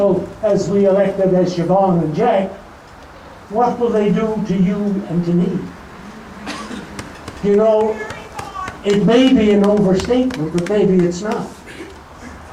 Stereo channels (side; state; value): both; identical; correlation 1.00